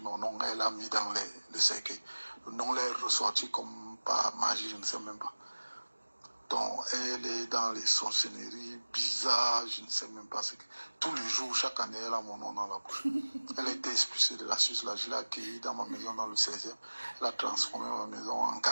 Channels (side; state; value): both; inverted; correlation -1.00